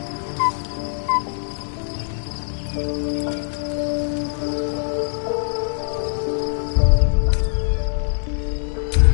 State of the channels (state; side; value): silent; right; 64 dB below the other